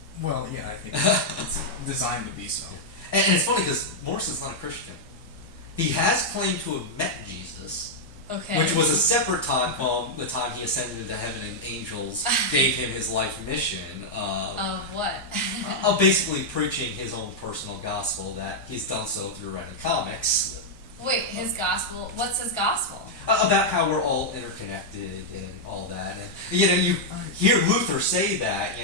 Well, yeah, I think it's designed to be so. And it's funny because Morrison's not a Christian. He has claimed to have met Jesus, Okay. which was a separate time from the time he ascended into heaven and angels gave him his life mission Of what? of basically preaching his own personal gospel that he's done so through writing comics. Wait, his gospel. What's his gospel? About how we're all interconnected and all that. And you hear Luther say that,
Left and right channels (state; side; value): normal; both; correlation -0.04